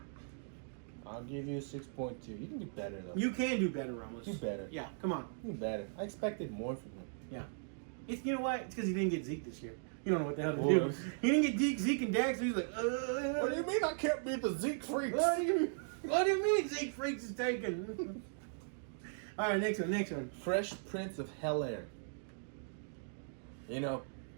I'll give you a 6.2. You can do better, though. You can do better, Ramos. Do better. Yeah, come on. Do better. I expected more from him. Yeah. You know what? It's because he didn't get Zeke this year. You don't know what the hell to Boy. do. He didn't get Zeke and Dax, so he's like, What do you mean I can't beat the Zeke freaks? What do you mean Zeke Freaks is taken? All right, next one. Fresh Prince of Bel-Air. You know,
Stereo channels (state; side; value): silent; left; digital silence